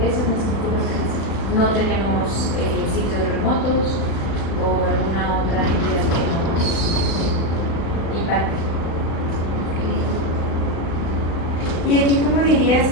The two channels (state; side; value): late; right; 36 ms